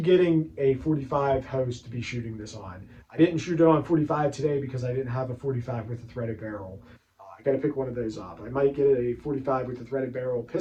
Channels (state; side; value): identical; both; correlation 1.00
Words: a 45 hose to be shooting this on. I didn't shoot it on 45 today because I didn't have a 45 with a threaded barrel. Got to pick one of those up. I might get a 45 with a threaded barrel